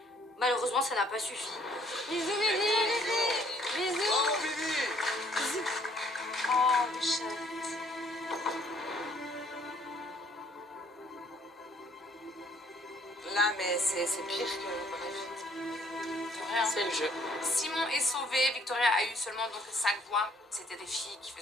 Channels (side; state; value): both; normal; correlation 0.63